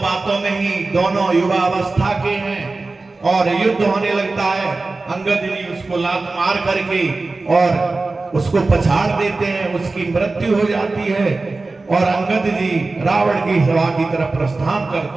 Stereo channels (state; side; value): quieter; left; 3.5 dB